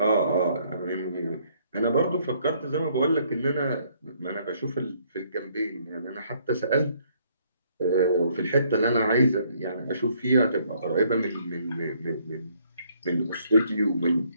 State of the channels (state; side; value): inverted; both; correlation -0.66